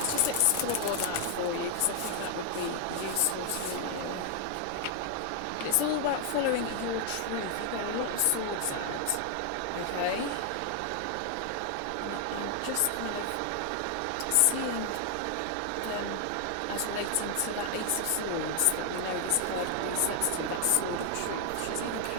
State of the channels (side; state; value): both; different; correlation 0.00